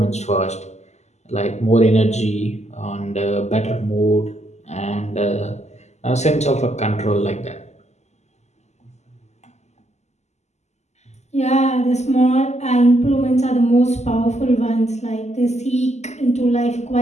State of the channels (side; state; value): right; late; 0.33 ms